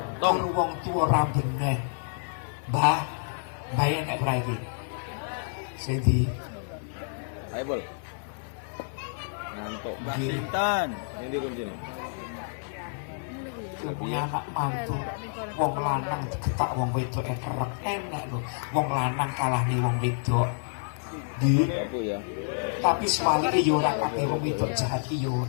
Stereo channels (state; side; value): silent; right; 59 dB below the other